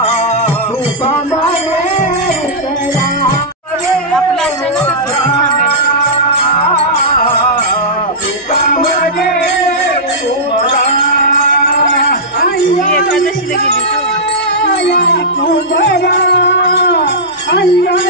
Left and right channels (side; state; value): both; normal; correlation -0.13